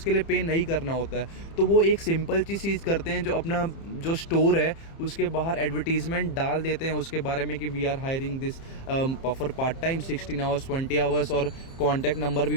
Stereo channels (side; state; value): right; late; 30 ms